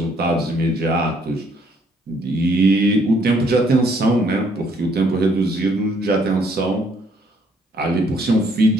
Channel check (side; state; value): both; normal; correlation 0.66